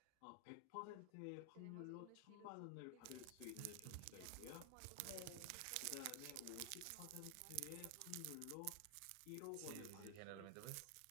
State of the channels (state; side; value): different; both; correlation 0.00